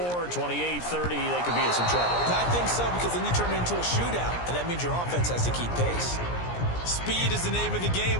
28, 30, they could be in some trouble. I think so, because then you turn it into a shootout, and that means your offense has to keep pace. Speed is the name of the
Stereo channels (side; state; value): right; late; 17 ms